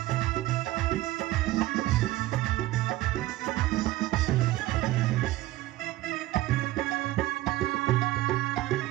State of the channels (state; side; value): quieter; left; 16.6 dB